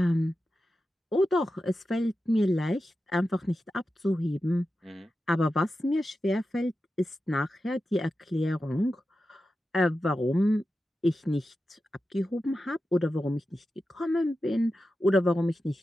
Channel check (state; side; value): normal; both; correlation 0.91